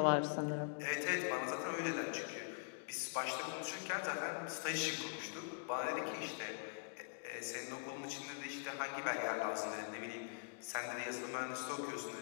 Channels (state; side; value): silent; right; digital silence